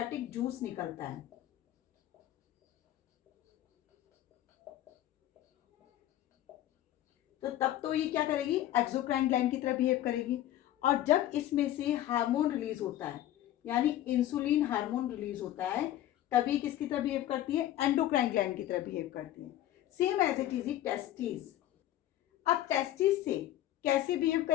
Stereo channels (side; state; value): right; quieter; 13.2 dB